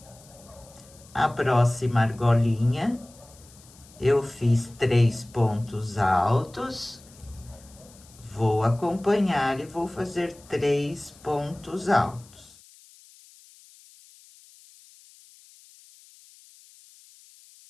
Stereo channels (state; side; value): noise; left; hiss, 25 dB below the sound